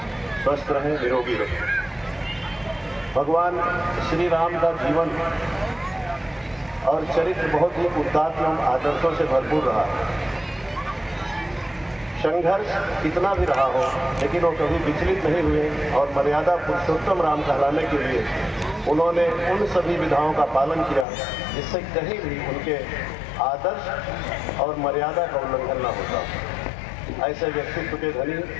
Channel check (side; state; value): right; drops out; at 21.1 s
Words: स्वस्थ रहें, निरोगी रहें। भगवान श्री राम का जीवन और चरित्र बहुत ही उदात्त एवं आदर्शों से भरपूर रहा। संघर्ष कितना भी रहा हो लेकिन वो कभी विचलित नहीं हुए और मर्यादा पुरुषोत्तम राम कहलाने के लिए उन्होंने उन सभी विधाओं का पालन किया जिससे कहीं भी उनके आदर्श और मर्यादा का उल्लंघन न होता। ऐसे व्यक्तित्व के धनी